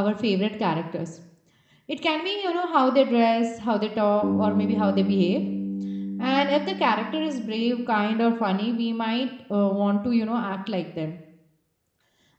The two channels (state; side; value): identical; both; correlation 1.00